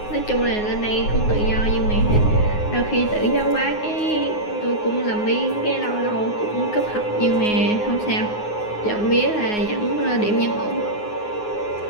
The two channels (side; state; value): right; late; 9.5 ms